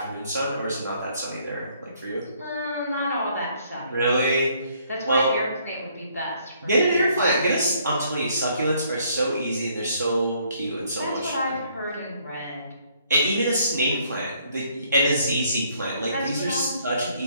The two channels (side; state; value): both; inverted; correlation -0.66